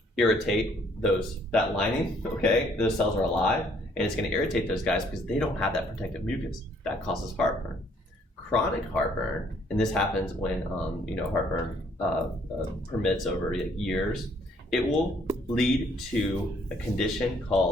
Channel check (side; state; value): both; normal; correlation 0.64